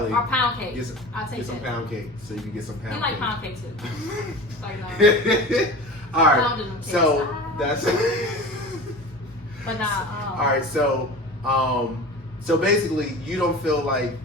or pound cake. I'll take get some that. pound cake so you can get some pound You cake. like pound cake too. Like no. All right. Pounding them So cakes. that's. But nah. All right. So basically, you don't feel like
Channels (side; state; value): both; normal; correlation 0.34